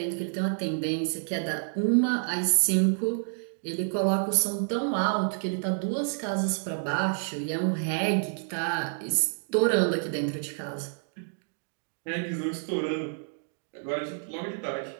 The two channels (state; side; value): silent; left; digital silence